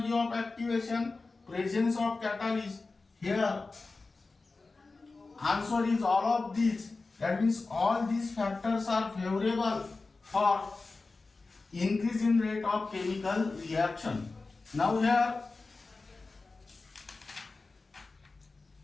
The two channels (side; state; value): right; quieter; 3.7 dB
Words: of activation, presence of catalyst. Here answer is all of these. That means all these factors are favorable for increase in rate of chemical reaction. Now here